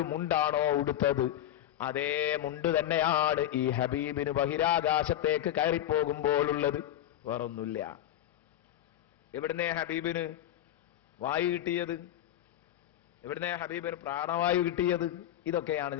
മുണ്ടാണോ ഉടുത്തത്, അതേ മുണ്ട് തന്നെയാണ് ഈ ഹബീബിന് ബഹിരാകാശത്തേക്ക് കയറിപ്പോകുമ്പോഴുള്ളത്. വേറൊന്നുമില്ല. എവിടുന്നേ ഹബീബിന് വായു കിട്ടിയത്? എവിടുന്നേ ഹബീബിന് പ്രാണവായു കിട്ടിയത്? ഇതൊക്കെയാണ്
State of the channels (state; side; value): quieter; right; 12.2 dB